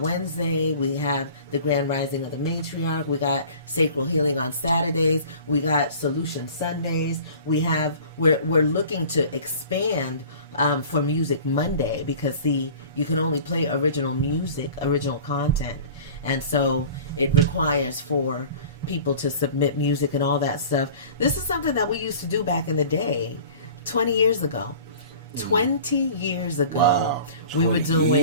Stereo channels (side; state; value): both; inverted; correlation -0.43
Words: we have the Grand Rising of the Matriarch, we got Sacral Healing on Saturdays, we got Solution Sundays, we're looking to expand for Music Monday because, see, you can only play original music, original content, and so it requires for people to submit music and all that stuff. This is something that we used to do back in the day. 20 years ago, wow, we were